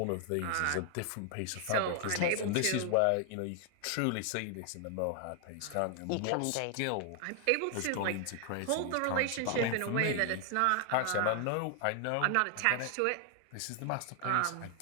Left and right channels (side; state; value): both; different; correlation 0.00